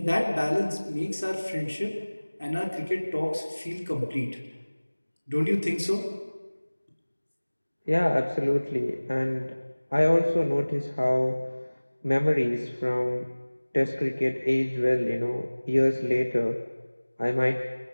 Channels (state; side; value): inverted; both; correlation -1.00